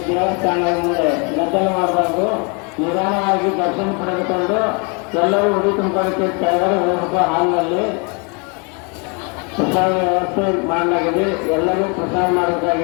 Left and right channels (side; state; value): right; quieter; 33.7 dB